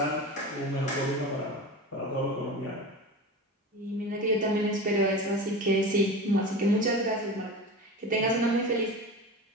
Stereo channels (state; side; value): normal; both; correlation 0.30